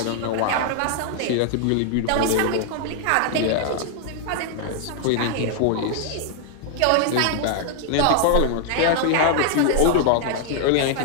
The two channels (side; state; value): both; different; correlation 0.00